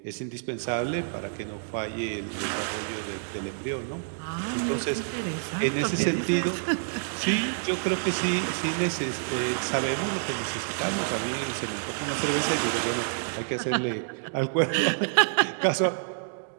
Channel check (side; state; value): left; silent; digital silence